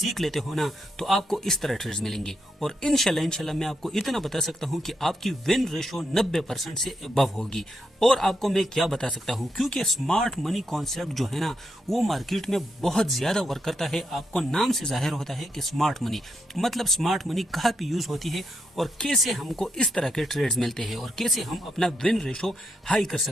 लेते हो ना, तो आपको इस तरह ट्रेड्स मिलेंगे। और इंशाल्लाह मैं आपको इतना बता सकता हूँ कि आपकी विन रेशो 90% से अबव होगी। और आपको मैं क्या बता सकता हूँ, क्योंकि स्मार्ट मनी कॉन्सेप्ट जो है ना, वो मार्केट में बहुत ज्यादा वर्क करता है। आपको नाम से जाहिर होता है कि स्मार्ट मनी मतलब स्मार्ट मनी कहाँ पे यूज होती है और कैसे हमको इस तरह के ट्रेड्स मिलते हैं और कैसे हम अपना विन रेशो हाई कर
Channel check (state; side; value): normal; both; correlation 0.81